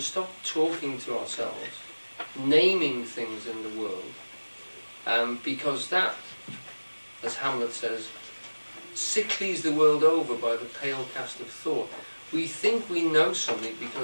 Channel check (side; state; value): both; inverted; correlation -1.00